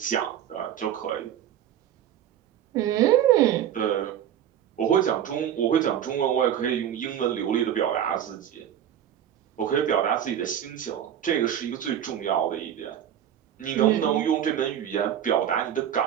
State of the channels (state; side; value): quieter; left; 10.2 dB